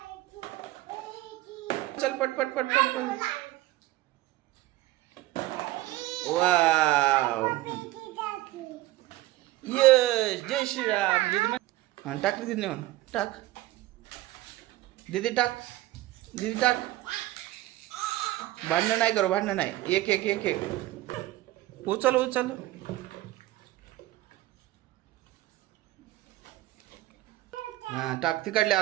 चल पट पट पट पट पट. वाव यस जय श्रीराम दीदी. हां टाक दीदी नेऊन टाक दीदी टाक दीदी टाक. भांडणं नाही करू भांडणं नाही. एक एक एक एक उचल उचल. हां टाक तिकडले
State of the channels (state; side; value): quieter; left; 16.9 dB